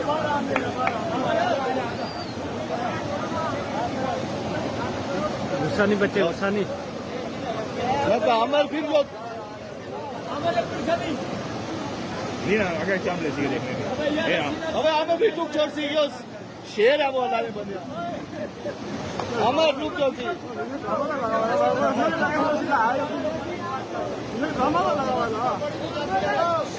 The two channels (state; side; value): identical; both; correlation 1.00